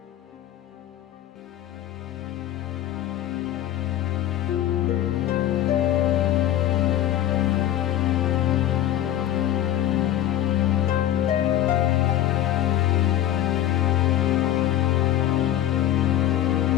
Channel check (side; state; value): right; quieter; 12.3 dB